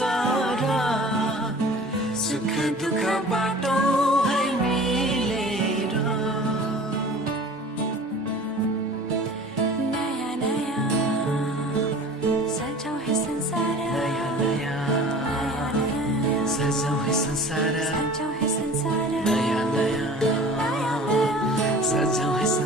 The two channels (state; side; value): normal; both; correlation 0.43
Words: सुख दुःख बाटो है मिलेर नयाँ नयाँ सजाऊ है संसार नयाँ नयाँ सजाऊ है संसार सजाऊ है संसार नयाँ नयाँ सजाऊ है